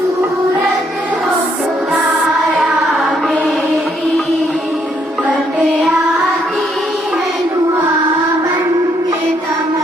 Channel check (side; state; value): both; normal; correlation 0.71